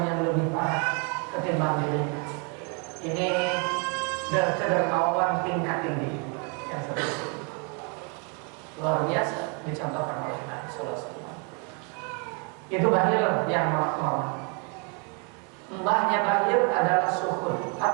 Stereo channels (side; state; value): left; quieter; 36.2 dB